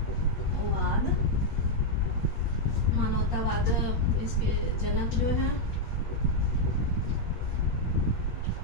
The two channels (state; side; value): late; right; 8.5 ms